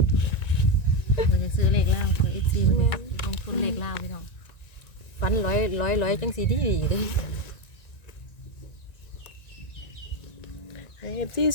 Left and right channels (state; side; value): late; right; 1.9 ms